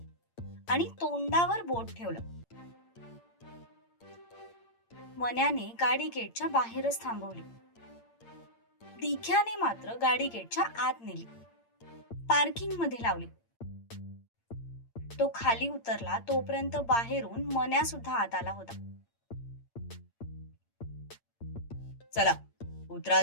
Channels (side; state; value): right; late; 8.7 ms